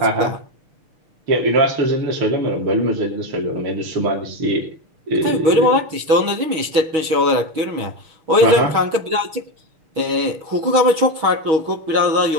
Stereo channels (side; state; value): left; late; 6.3 ms